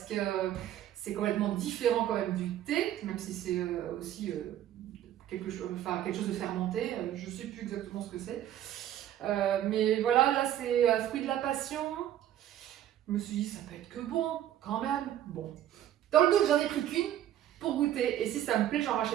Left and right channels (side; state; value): left; quieter; 11.7 dB